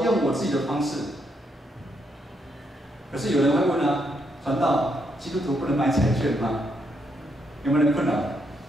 用我自己的方式，可是有人会问传道，基督徒不能买彩券吗？有没有人困扰？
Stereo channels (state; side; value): normal; both; correlation 0.77